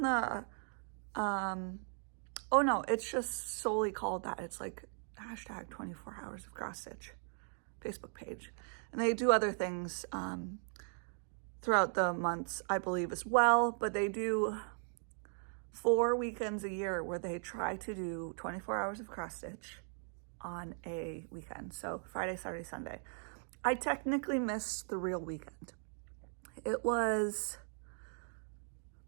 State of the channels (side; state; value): left; silent; 52 dB below the other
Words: the, oh no, it's just solely called that. It's like hashtag 24 hours of cross stitch Facebook page. And they do other things throughout the months, I believe, as well, but they do 4 weekends a year where they try to do 24 hours of cross stitch on a weekend. So Friday, Saturday, Sunday. I technically missed the real weekend. It was